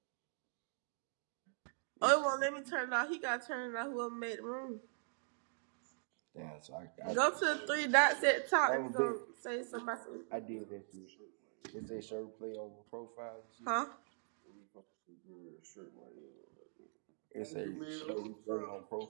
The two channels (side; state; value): left; silent; digital silence